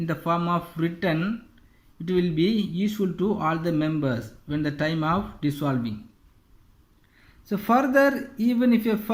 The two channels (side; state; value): both; identical; correlation 1.00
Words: the form of written, it will be useful to all the members when the time of dissolving. So further, even if a